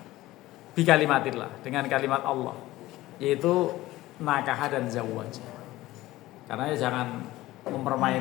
bi kalimatillah, dengan kalimat Allah, yaitu nakaha dan zawwaja. Karena jangan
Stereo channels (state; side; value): quieter; right; 17.2 dB